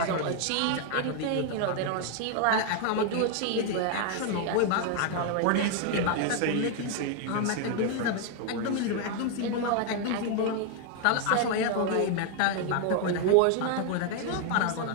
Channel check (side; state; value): both; different; correlation 0.00